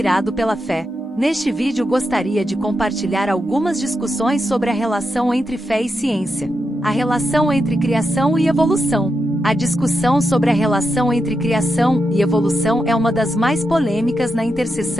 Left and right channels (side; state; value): both; normal; correlation 0.86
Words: pela Fé. Neste vídeo gostaria de compartilhar algumas discussões sobre a relação entre fé e ciência. A relação entre criação e evolução. A discussão sobre a relação entre criação e evolução é uma das mais polêmicas na